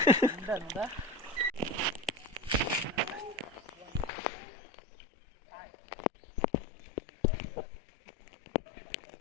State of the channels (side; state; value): right; drops out; at 4.1 s